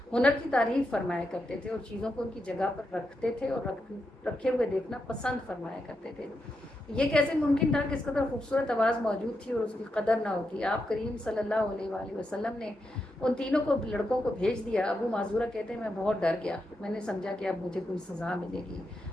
ہنر کی تعریف فرمایا کرتے تھے اور چیزوں کو ان کی جگہ پر رکھتے تھے اور رکھے ہوئے دیکھنا پسند فرمایا کرتے تھے۔ یہ کیسے ممکن تھا کہ اس قدر خوبصورت آواز موجود تھی اور اس کی قدر نہ ہوتی؟ آپ کریم صلی اللہ علیہ وآلہ وسلم نے ان تینوں لڑکوں کو بھیج دیا۔ ابو معذورہ کہتے ہیں میں بہت ڈر گیا، میں نے سمجھا کہ اب مجھے کوئی سزا ملے گی۔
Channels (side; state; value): both; normal; correlation 0.85